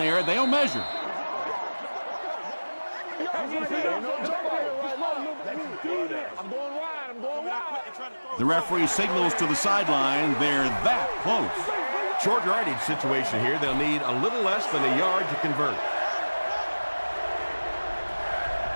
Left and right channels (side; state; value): both; inverted; correlation -1.00